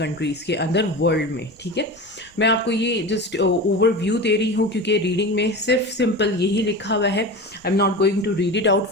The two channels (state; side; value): normal; both; correlation 0.29